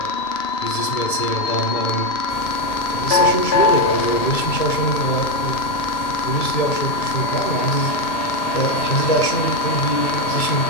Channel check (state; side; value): late; right; 2.3 ms